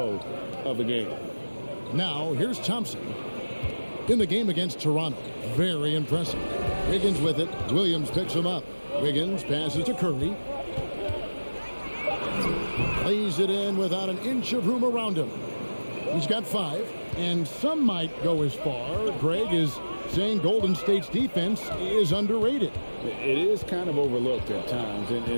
of the game. Now, here's Thompson. In the game against Toronto, very impressive. Wiggins with it. Williams picks him up. Wiggins passes to Curry. Lays it in without an inch of room around him. He's got 5, and some might go as far. Greg is saying Golden State's defense is underrated. It is kind of overlooked at times,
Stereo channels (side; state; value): both; inverted; correlation -1.00